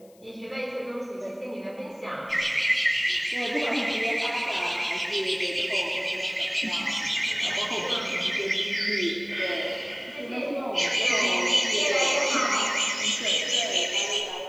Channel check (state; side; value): noise; left; hiss, 30 dB below the sound